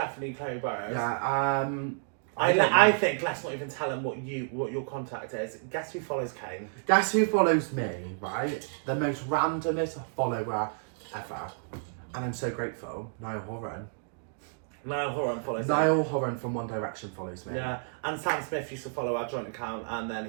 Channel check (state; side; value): silent; left; digital silence